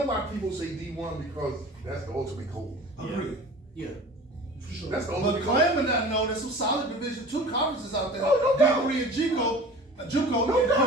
why people say D1 because that's the ultimate goal. Agreed. Yeah. For sure. That's the But ultimate goal. claiming that, no, there's some solid Division II conferences out there. Oh, no doubt. D3 and JUCO, No and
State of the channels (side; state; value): both; normal; correlation 0.41